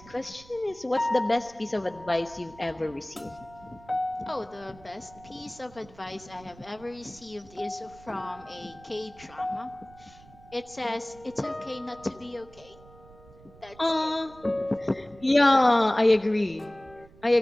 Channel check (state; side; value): noise; right; rumble, 23 dB below the sound